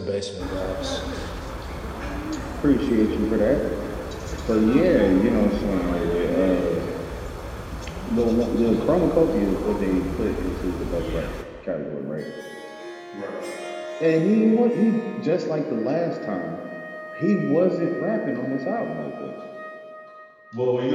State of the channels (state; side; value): identical; both; correlation 1.00